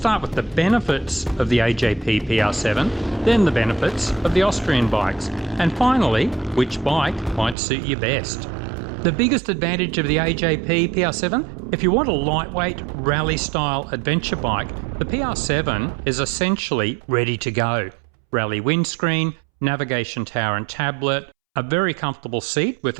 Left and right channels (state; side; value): drops out; left; at 7.6 s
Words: with the benefits of the AJP PR7, then the benefits of the Austrian bikes, and finally, which bike might suit you best. The biggest advantage of the AJP PR7, if you want a lightweight rally-style adventure bike, the PR7 is essentially ready to go. Rally windscreen, navigation tower and tablet, a very comfortable seat